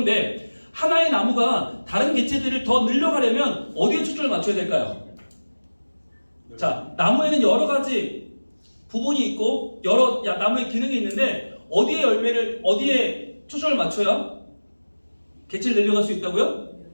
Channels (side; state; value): both; inverted; correlation -1.00